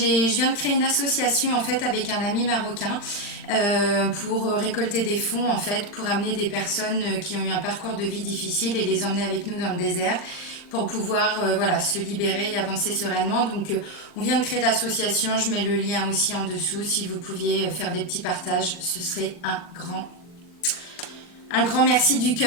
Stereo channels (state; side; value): late; right; 40 ms